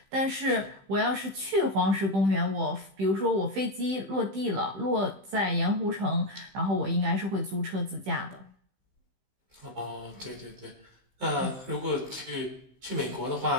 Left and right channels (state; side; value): late; left; 15 ms